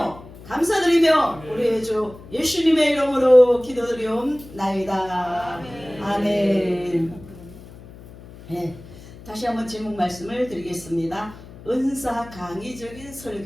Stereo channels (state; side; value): noise; left; hum, 18 dB below the sound